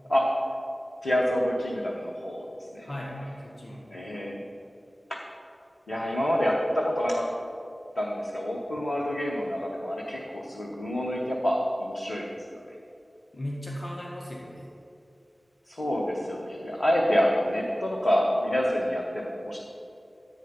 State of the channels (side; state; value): both; normal; correlation 0.96